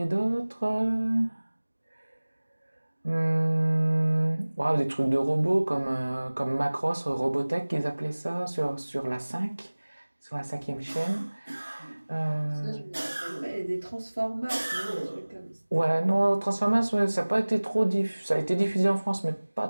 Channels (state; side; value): inverted; both; correlation -1.00